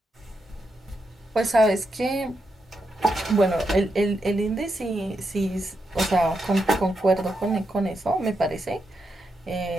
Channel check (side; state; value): both; normal; correlation 0.84